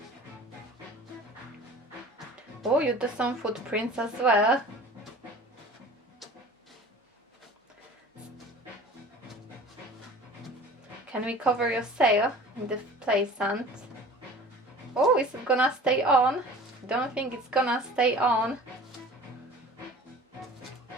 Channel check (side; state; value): both; normal; correlation 0.43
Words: Oh, you do some footprints as well. Can we cover your sail in the play sand? Oh, is it gonna stay on? Don't think it's gonna stay on.